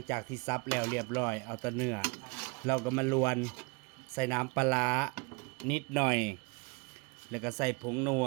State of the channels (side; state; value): left; quieter; 30.2 dB